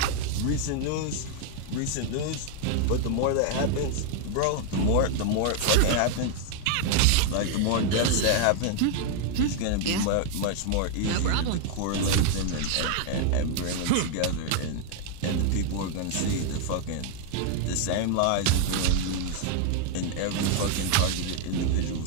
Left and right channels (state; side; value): different; both; correlation 0.00